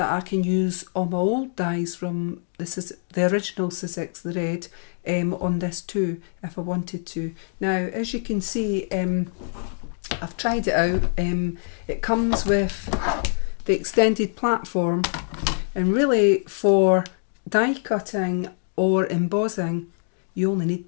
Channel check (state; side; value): silent; right; digital silence